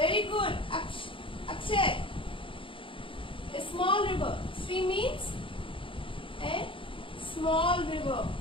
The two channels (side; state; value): right; late; 0.25 ms